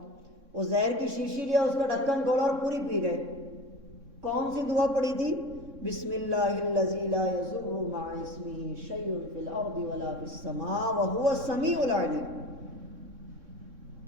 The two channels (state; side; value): late; left; 3.6 ms